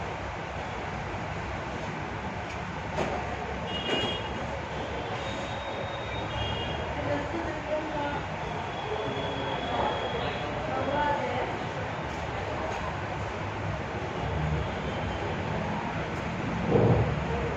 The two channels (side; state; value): both; identical; correlation 1.00